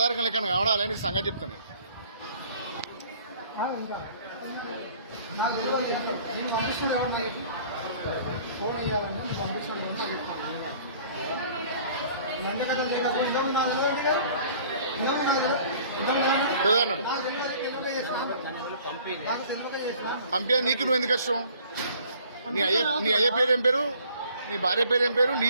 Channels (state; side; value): inverted; both; correlation -0.53